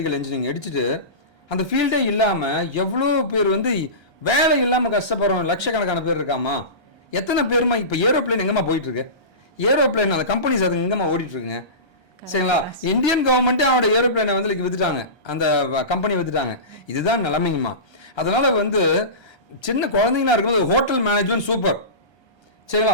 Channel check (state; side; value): late; right; 1.3 ms